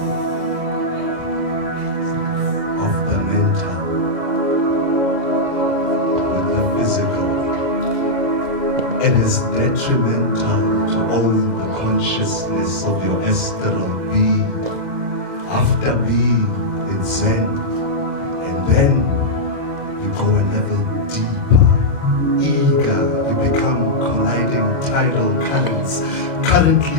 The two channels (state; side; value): late; left; 2.0 ms